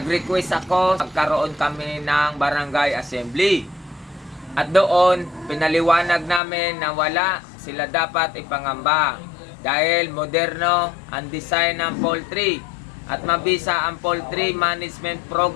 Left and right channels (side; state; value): right; drops out; at 6.4 s